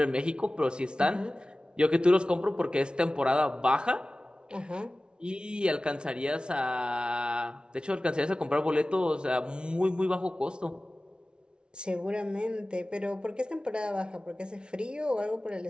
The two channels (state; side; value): late; left; 0.056 ms